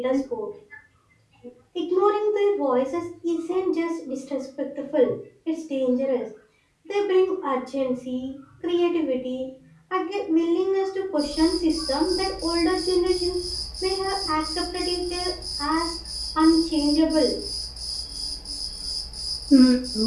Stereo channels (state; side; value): identical; both; correlation 1.00